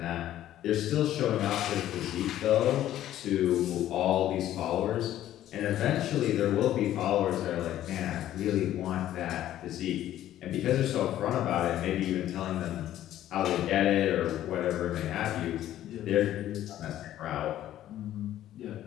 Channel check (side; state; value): right; quieter; 12.7 dB